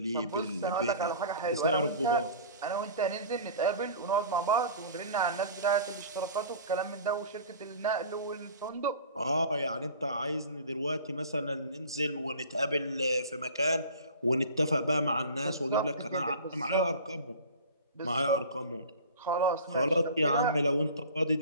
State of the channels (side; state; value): both; inverted; correlation -0.40